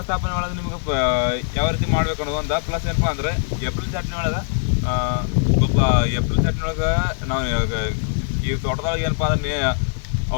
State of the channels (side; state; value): right; silent; digital silence